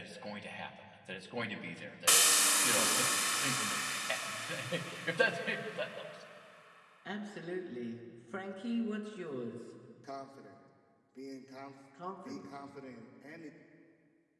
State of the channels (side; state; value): both; identical; correlation 1.00